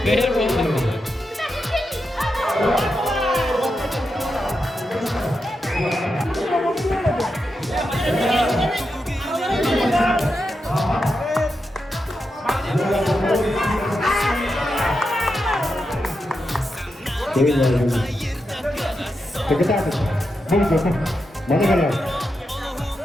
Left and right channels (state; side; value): normal; both; correlation 0.87